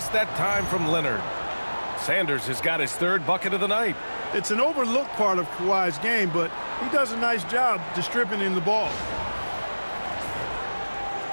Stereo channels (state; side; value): inverted; both; correlation -1.00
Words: that time from Leonard. Sanders has got his 3rd bucket of the night. It's an overlooked part of Kawhi's game, but he does a nice job distributing the ball.